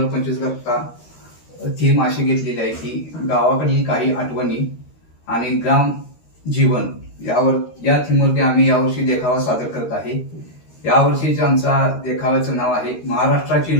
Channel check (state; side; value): late; right; 13 ms